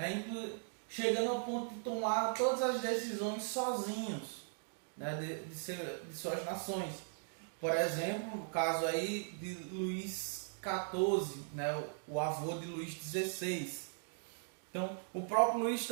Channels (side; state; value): left; silent; digital silence